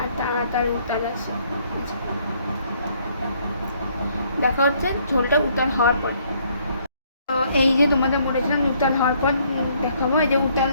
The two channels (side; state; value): both; inverted; correlation -0.66